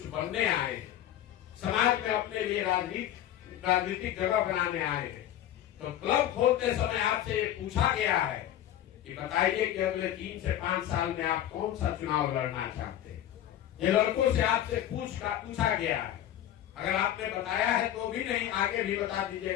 बनने आए हैं, समाज में अपने लिए राजनीतिक जगह बनाने आए हैं, तो क्लब खोलते समय आपसे ये पूछा गया है कि बताइए कि अगले 3 से 5 साल में आप कौन सा चुनाव लड़ना चाहते हैं। ये लड़कों से आपसे पूछा गया है। अगर आपने बताया है तो भी नहीं, आगे भी बता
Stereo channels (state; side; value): quieter; right; 11.9 dB